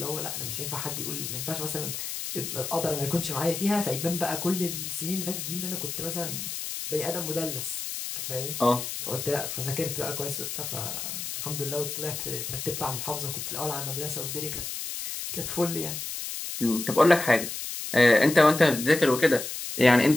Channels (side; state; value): left; noise; hiss, 6 dB below the sound